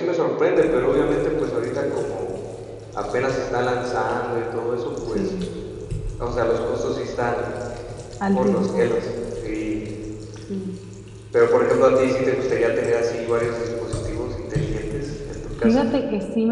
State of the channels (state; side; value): identical; both; correlation 1.00